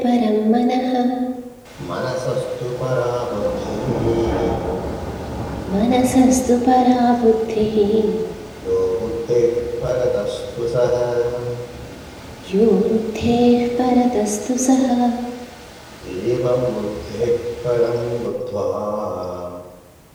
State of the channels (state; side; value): identical; both; correlation 1.00